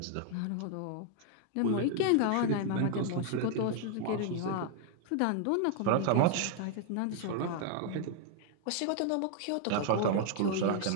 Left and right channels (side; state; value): both; different; correlation 0.00